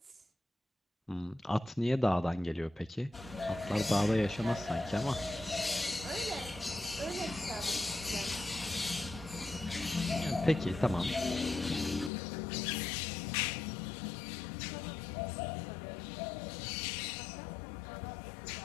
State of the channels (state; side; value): drops out; right; at 12.1 s